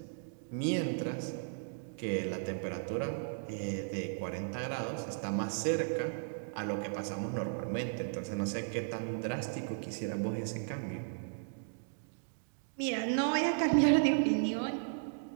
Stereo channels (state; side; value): silent; left; digital silence